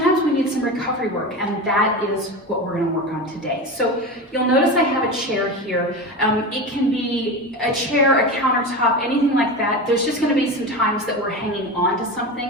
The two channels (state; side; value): normal; both; correlation 0.24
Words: we need some recovery work, and that is what we're going to work on today. So you'll notice I have a chair here. It can be a chair, a countertop, anything like that. There's just going to be some times that we're hanging on to